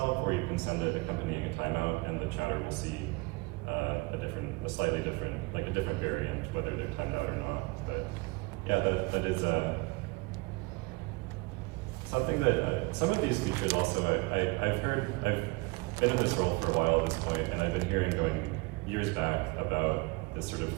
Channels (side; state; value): left; quieter; 26.6 dB